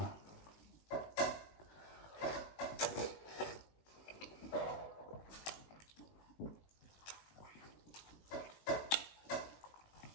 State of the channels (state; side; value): late; right; 19 ms